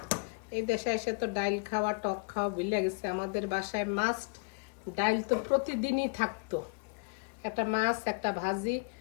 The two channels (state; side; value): quieter; right; 33.7 dB